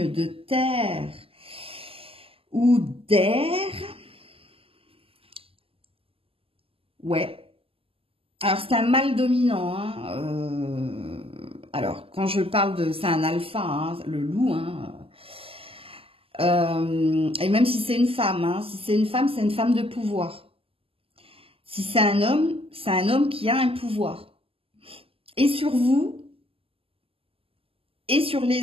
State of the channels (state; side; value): late; left; 0.27 ms